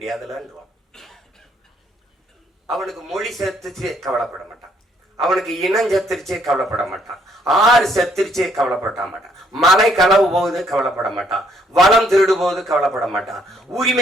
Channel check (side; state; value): both; normal; correlation 0.68